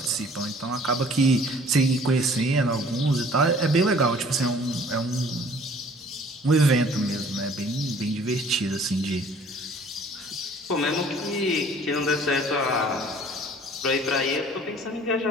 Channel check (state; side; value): normal; both; correlation 0.53